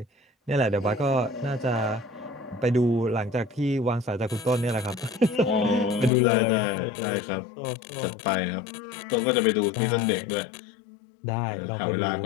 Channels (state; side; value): drops out; right; at 6.1 s